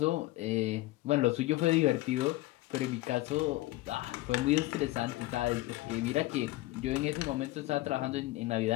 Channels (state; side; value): quieter; right; 18.5 dB